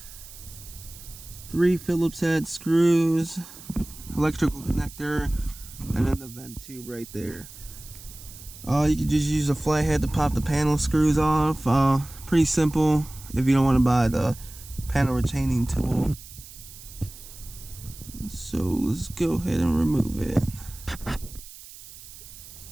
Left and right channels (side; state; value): right; noise; hiss, 17 dB below the sound